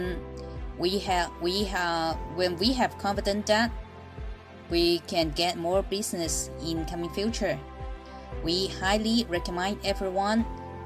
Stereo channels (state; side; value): identical; both; correlation 1.00